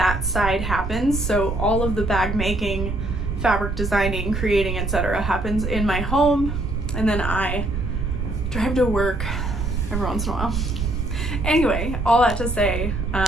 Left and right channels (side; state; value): right; noise; rumble, 3 dB below the sound